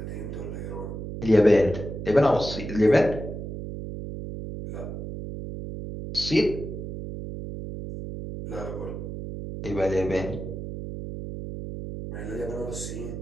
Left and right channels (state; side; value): noise; right; hum, 7 dB below the sound